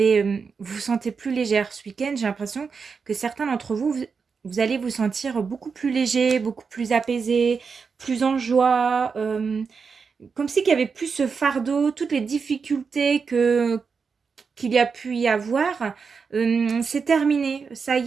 vous sentez plus légère ce week-end. J'ai l'impression que certains d'entre vous allez vous sentir beaucoup plus léger, beaucoup plus apaisé, plus en joie. Comme si qu'il y avait plus ce fardeau, toutes les difficultés qu'il y a pu y avoir, c'est terminé. Ça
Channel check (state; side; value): quieter; left; 5.4 dB